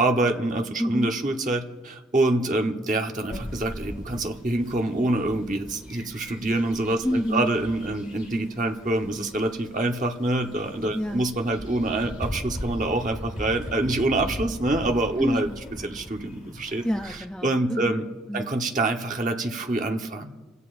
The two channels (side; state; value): both; normal; correlation 0.66